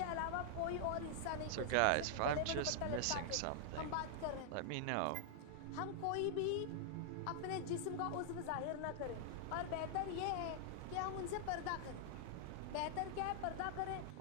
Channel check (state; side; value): different; both; correlation -0.01